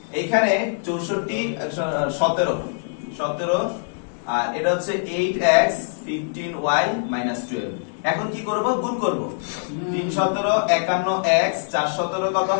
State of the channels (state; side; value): silent; right; digital silence